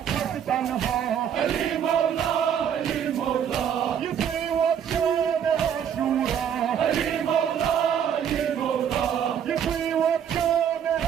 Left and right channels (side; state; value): left; quieter; 8.7 dB